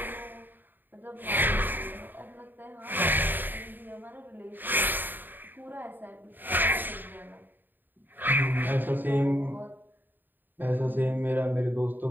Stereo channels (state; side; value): late; left; 0.091 ms